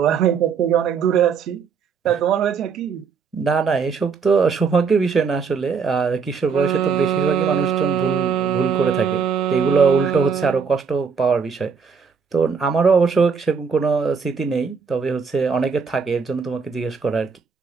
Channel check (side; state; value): left; quieter; 5.9 dB